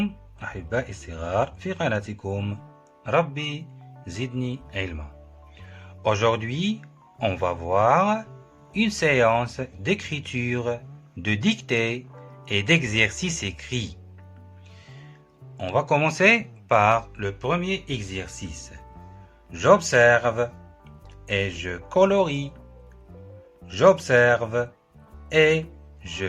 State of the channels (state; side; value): identical; both; correlation 1.00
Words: أحبائي الصغار في قناتكم ربي زدني علما. Aujourd'hui, on va voir une séance d'écriture, de dictée et d'exercice écrit. On va commencer par le premier exercice. J'observe et je colorie. J'observe et je